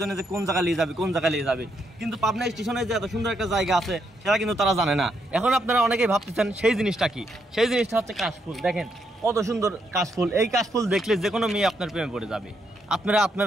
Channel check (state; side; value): normal; both; correlation 0.77